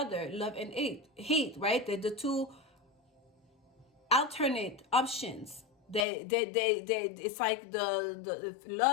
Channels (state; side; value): drops out; right; at 6.1 s